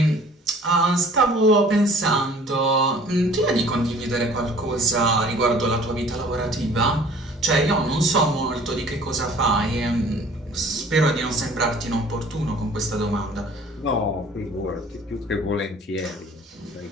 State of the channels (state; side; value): normal; both; correlation 0.51